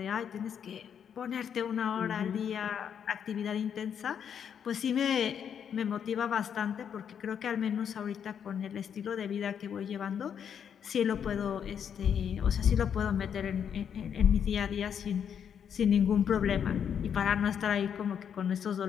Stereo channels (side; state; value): right; quieter; 8.1 dB